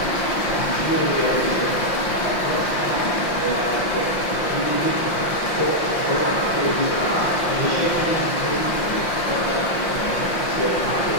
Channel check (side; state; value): right; late; 5.7 ms